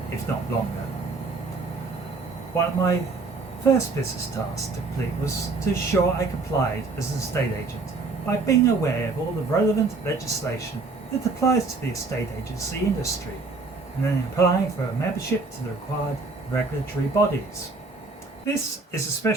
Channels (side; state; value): left; quieter; 3.9 dB